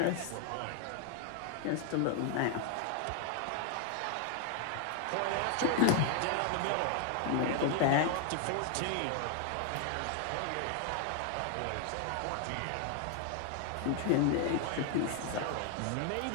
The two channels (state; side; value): different; both; correlation 0.00